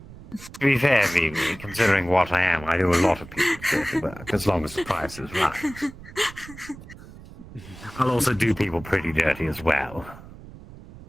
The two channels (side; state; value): right; noise; rumble, 17 dB below the sound